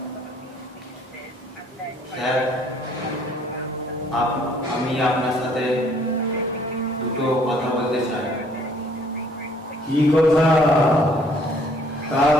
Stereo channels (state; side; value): normal; both; correlation 0.61